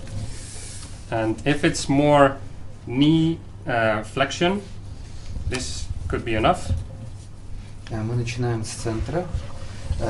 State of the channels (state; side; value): identical; both; correlation 1.00